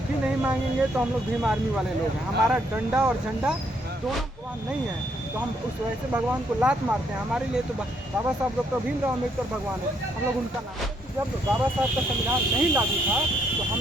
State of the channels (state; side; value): normal; both; correlation 0.71